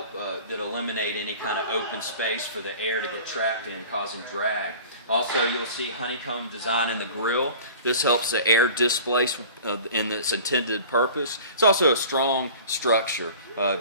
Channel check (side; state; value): both; inverted; correlation -0.43